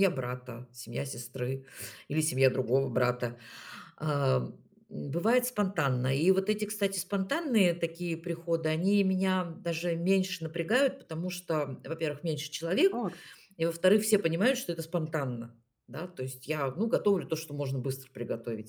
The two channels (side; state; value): both; identical; correlation 1.00